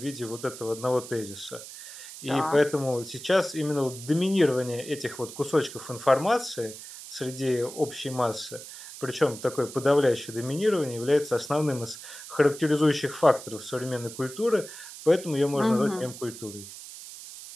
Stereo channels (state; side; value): noise; right; hiss, 13 dB below the sound